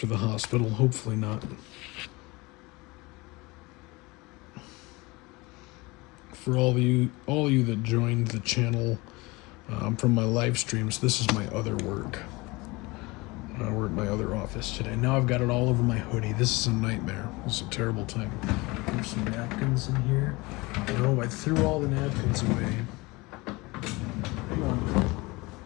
the hospital. Hopefully not. For all of you that joined the channel from my live streams, this is my other work. We're at my other office today. Now I've got it all over my hoodie. This is a nightmare. This is a terrible time. There's some napkins in here. No, I threw all the napkins away. Come on.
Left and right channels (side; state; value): right; quieter; 23.7 dB